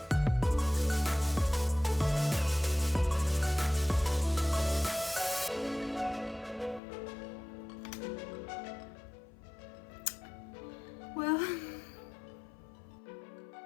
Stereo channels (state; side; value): drops out; right; at 6.8 s